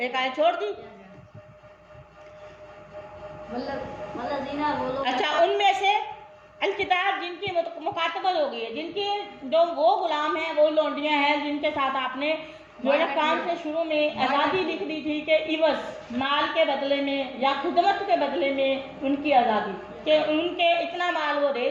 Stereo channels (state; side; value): identical; both; correlation 1.00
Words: आयत छोड़ दी। अच्छा, उनमें से अल किताब जिनकी मुकातबत हो गई है, जिनकी जो वो गुलाम हैं, वो लौंडियाँ हैं जिनके साथ आपने जो है काम से शुरू में आज़ादी लिख दी थी कि इवज, माल के बदले में या खिदमत के बदले में उनकी आज़ादी, कि उनके इतना माल वो दे